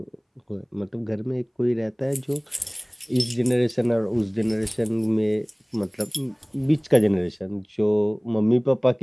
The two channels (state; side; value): identical; both; correlation 1.00